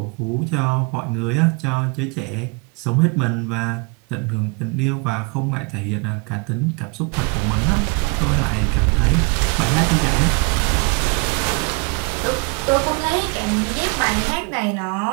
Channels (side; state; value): left; quieter; 32.3 dB